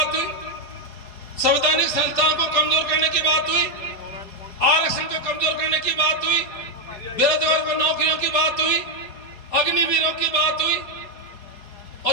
हुई, संवैधानिक संस्थानों को कमजोर करने की बात हुई, आरक्षण को कमजोर करने की बात हुई, बेरोजगार को नौकरियों की बात हुई, अग्निवीरों की बात हुई।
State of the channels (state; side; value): late; right; 4.5 ms